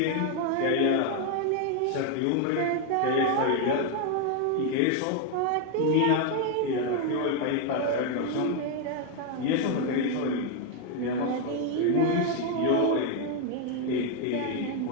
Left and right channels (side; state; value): both; different; correlation 0.01